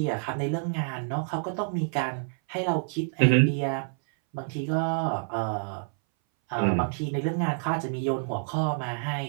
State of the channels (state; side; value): silent; left; 59 dB below the other